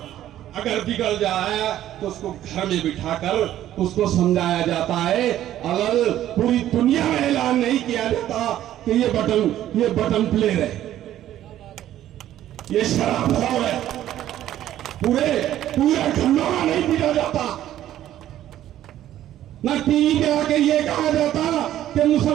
अगर बिगड़ जाए तो उसको घर में बिठाकर उसको समझाया जाता है। अगर पूरी दुनिया में ऐलान नहीं किया जाता कि ये बटन प्लेयर है, ये शराबखोर है, पूरे घरों में नहीं पीटा जाता, ना टीवी पे आके ये कहा जाता कि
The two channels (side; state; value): left; quieter; 12.5 dB